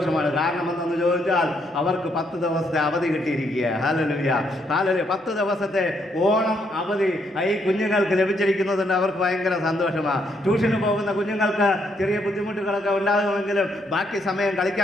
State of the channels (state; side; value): normal; both; correlation 0.74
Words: കാരണം എന്തെന്ന് ചോദിച്ചാൽ അവർക്ക് 10 ദിവസത്തെ അവധി കിട്ടിയിരിക്കുക. Hallelujah, hallelujah. 10 ദിവസത്തെ ഓണം അവധി ഈ കുഞ്ഞുങ്ങൾക്ക് ലഭിച്ചിരിക്കുന്നതുകൊണ്ട് അവർക്ക് ഭയങ്കര സന്തോഷമാണ്. ട്യൂഷന് പോകുന്ന കുഞ്ഞുങ്ങൾക്ക് ചെറിയ ബുദ്ധിമുട്ടുകളൊക്കെ ഉണ്ടാകുമെങ്കിലും ബാക്കി സമയം